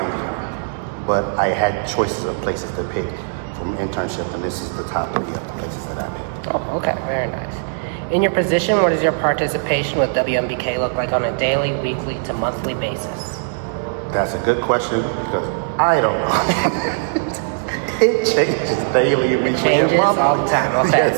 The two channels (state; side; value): silent; left; digital silence